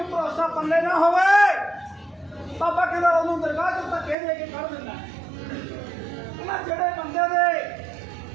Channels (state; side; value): drops out; left; at 4.2 s